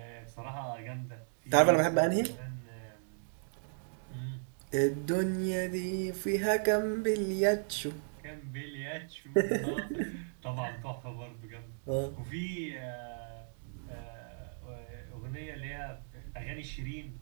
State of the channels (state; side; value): silent; left; digital silence